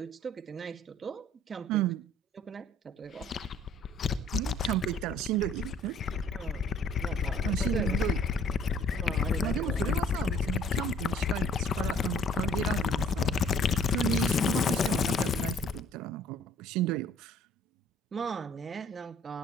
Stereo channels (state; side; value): normal; both; correlation 0.56